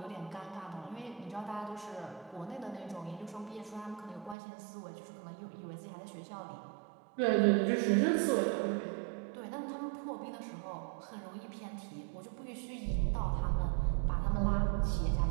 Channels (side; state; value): left; drops out; at 4.4 s